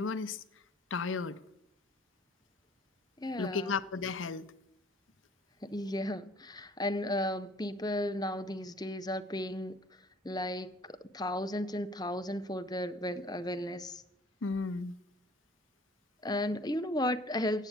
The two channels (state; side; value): normal; both; correlation 0.53